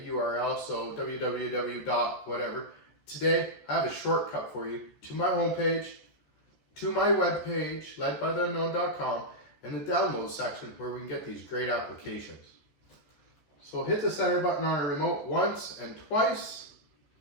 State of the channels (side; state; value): right; late; 14 ms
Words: URL, so www. whatever. Today, I have a shortcut for you to my homepage, to my webpage, ledbytheunknown.com, and the download section where we can get these great applications. So hit the center button on our remote once and twice,